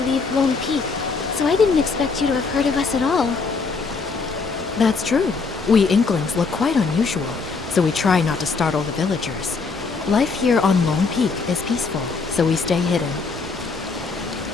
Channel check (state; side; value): quieter; right; 4.5 dB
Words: leave Lone Peak, so I didn't expect you to have heard of us at all. That's true. We Inklings look quite unusual, so we try not to startle the villagers. Life here on Lone Peak is peaceful, so we stay hidden.